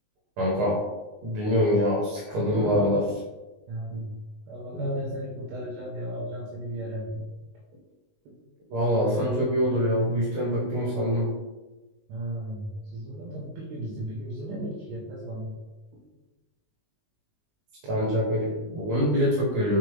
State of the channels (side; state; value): left; late; 19 ms